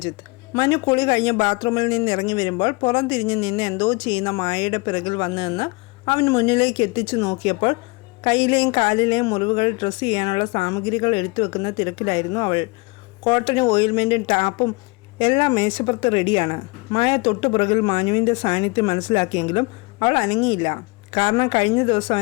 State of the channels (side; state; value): right; quieter; 27.0 dB